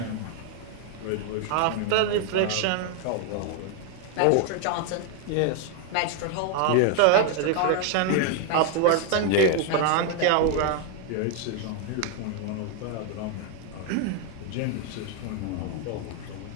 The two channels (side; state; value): both; different; correlation 0.01